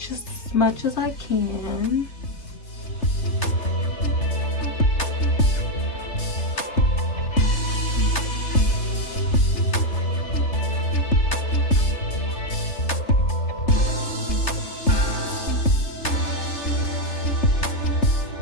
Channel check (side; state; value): right; late; 3.3 ms